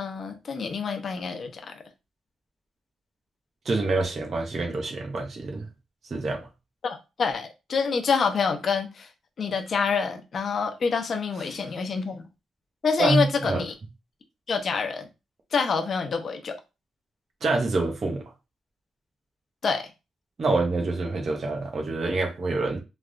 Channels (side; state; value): both; normal; correlation 0.82